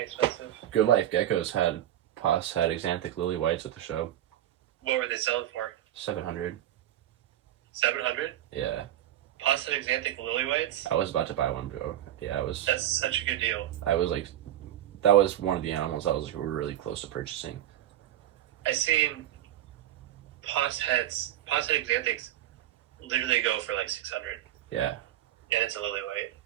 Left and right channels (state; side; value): quieter; left; 12.4 dB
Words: Good Life Geckos had Xanthic Lily Whites at the show. What were they selling for? 700. 700? Yeah. Pasta Xanthic Lily Whites? I was about to buy one, bro. Yeah, I was. That's such a good deal. I was like, that was one of the animals I was like, we were really close to purchasing. I seen Pasta Xanthics literally go for like 600. Yeah. And it's a lily white.